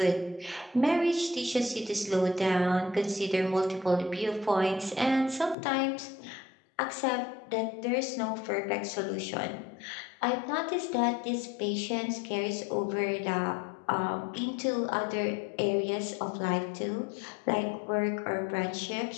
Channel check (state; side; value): drops out; right; at 5.6 s